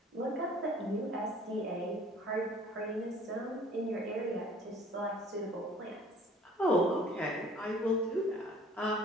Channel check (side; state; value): both; normal; correlation 0.52